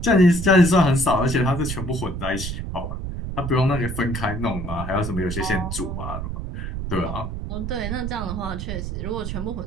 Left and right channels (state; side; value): noise; right; rumble, 5 dB below the sound